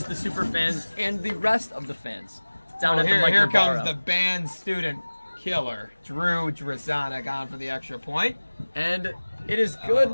the super fans and the rest of the fans down at the Mike Here Navarro. comes the band student killer, Drew Druzani, on for the extra point. And it is good.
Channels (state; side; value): inverted; both; correlation -1.00